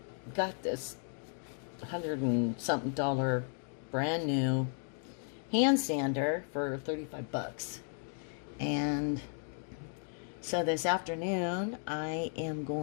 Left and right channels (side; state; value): right; silent; 55 dB below the other